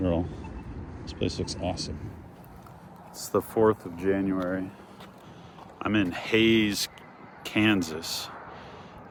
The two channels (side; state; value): both; identical; correlation 1.00